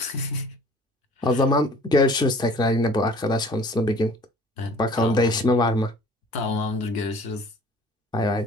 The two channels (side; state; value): both; normal; correlation 0.50